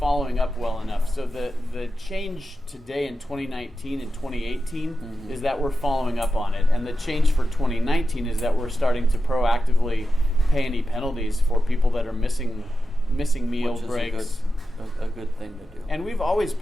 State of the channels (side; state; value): both; normal; correlation 0.91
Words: up well enough. So the change today in 2019 and 2018 is that we're following up on it. And the change for 2019 is that we're starting to proactively pay any penalties for people that are missing meal Which is breaks. a good thing to do. And we've always